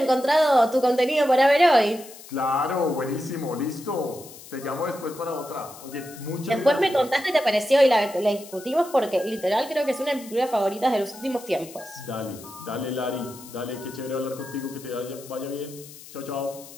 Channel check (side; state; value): left; noise; hiss, 18 dB below the sound